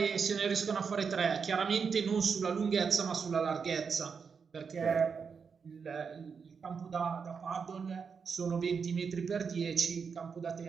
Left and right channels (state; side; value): quieter; left; 5.9 dB